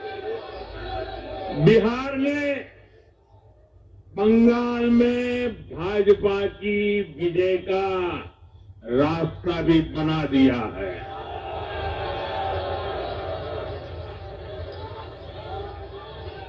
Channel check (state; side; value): identical; both; correlation 1.00